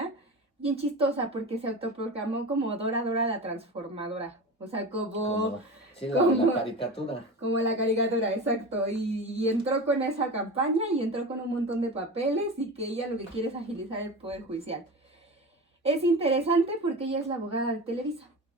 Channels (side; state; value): both; normal; correlation 0.29